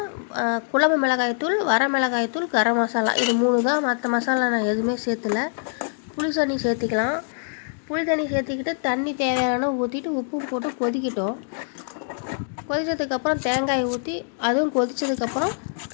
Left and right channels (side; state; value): right; silent; digital silence